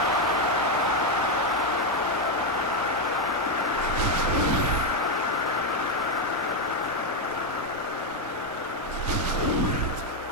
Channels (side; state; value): both; normal; correlation 0.04